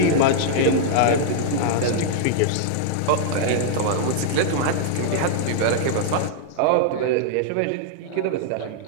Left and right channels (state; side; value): different; both; correlation -0.01